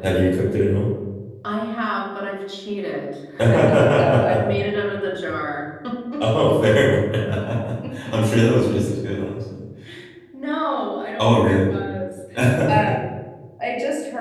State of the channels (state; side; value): identical; both; correlation 1.00